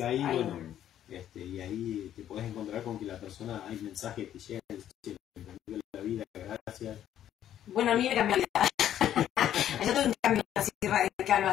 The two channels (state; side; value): quieter; right; 11.0 dB